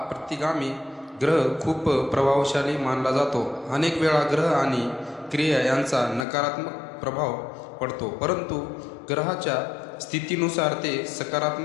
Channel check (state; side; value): drops out; right; at 6.2 s